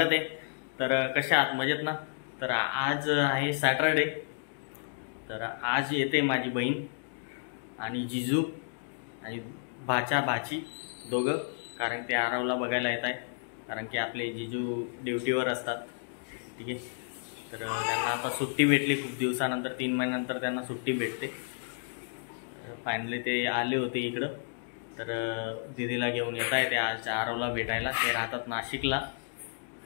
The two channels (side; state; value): right; silent; digital silence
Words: आहे। तर कशा आहात, मजेत ना? तर आज आहे सॅटरडे। तर आज येते माझी बहीण आणि जिजू आणि भाची दोघं, कारण ते आरवला बघायला येत आहे, कारण की आपले जिजू ड्युटीवर असतात। ठीक आहे, तर त्यांना आता सुट्टी भेटली खूप दिवसानंतर, 3 महिन्यानंतर त्यांना सुट्टी भेटते। फायनली ते आले होते इकडं, तर दीदीला घेऊन येत आहे ते आज आरवला भेटायला। ते राहतात नाशिकला।